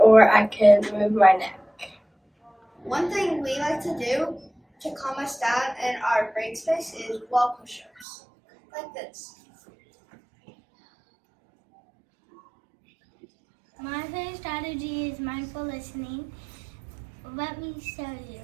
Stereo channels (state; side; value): drops out; left; at 8.1 s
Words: I can move my neck. One thing we like to do to calm us down in our break space is wall push-ups, like this. My favorite strategy is mindful listening. Let me show you.